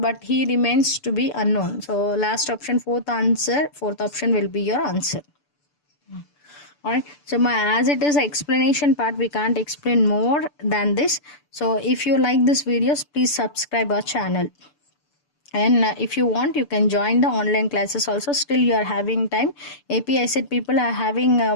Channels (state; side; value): late; right; 6.9 ms